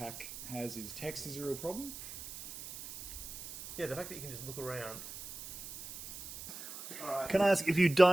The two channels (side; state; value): right; noise; hiss, 11 dB below the sound